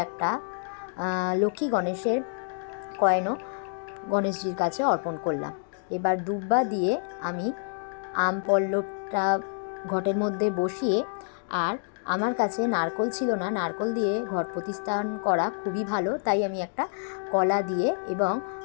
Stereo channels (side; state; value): right; silent; digital silence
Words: একটা লক্ষ্মী গণেশের কয়েনও গণেশজির কাছে অর্পণ করলাম। এবার দুব্বা দিয়ে আমি আম পল্লবটা ঘটের মধ্যে বসিয়ে, আর আমার কাছে নারকোল ছিল না, নারকোল দিয়ে ঘট প্রতিস্থাপন করা খুবই ভালো, তাই আমি একটা কলা দিয়ে এবং